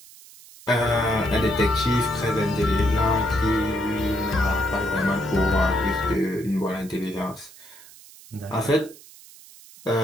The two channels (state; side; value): noise; right; hiss, 21 dB below the sound